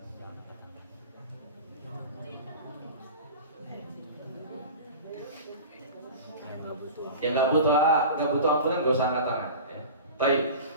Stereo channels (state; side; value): inverted; both; correlation -0.35